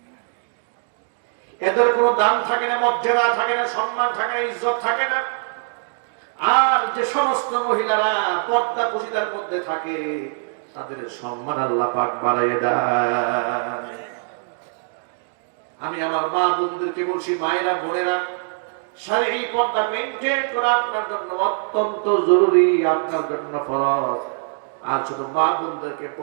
এদের কোনো দাম থাকে না, মর্যাদা থাকে না, সম্মান থাকে না, ইজ্জত থাকে না। আর যে সমস্ত মহিলারা পর্দা পশিদার মধ্যে থাকে, তাদের সম্মান আল্লাহ পাক বাড়াইয়ে দেয়। আমি আমার মা বোনদেরকে বলছি, মায়েরা বোনেরা, শারীরিক পর্দা মেইনটেইন করা আপনার জন্য অত্যন্ত জরুরি, আপনার জন্য ফরজ। আর শুধু মা বোনদেরকে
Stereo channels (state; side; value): silent; left; 64 dB below the other